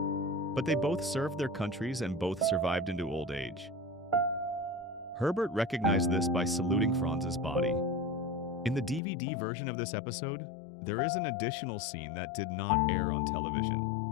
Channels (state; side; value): drops out; right; at 9.0 s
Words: but they both served their countries and both survived into old age. Herbert recognized this by saluting Franz's body. In the DVD version of this episode, there is an additional scene that did not air on